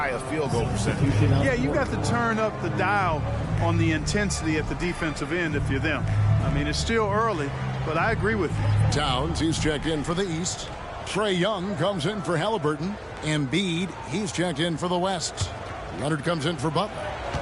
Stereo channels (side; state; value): both; identical; correlation 1.00